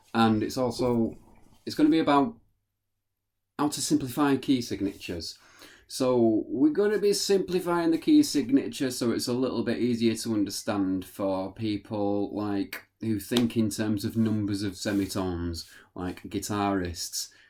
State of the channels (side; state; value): both; identical; correlation 1.00